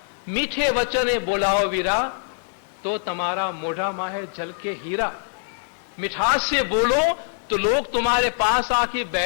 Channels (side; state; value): right; silent; digital silence